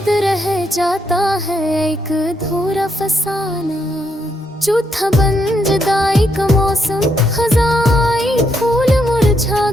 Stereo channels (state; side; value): normal; both; correlation 0.78